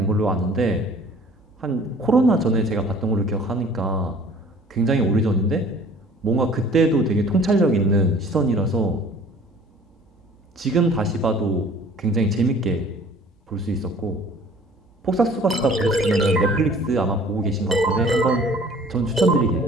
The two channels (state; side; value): normal; both; correlation 0.50